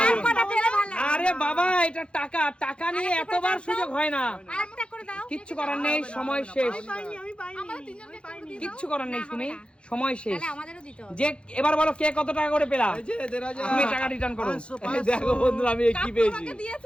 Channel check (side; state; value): right; late; 0.057 ms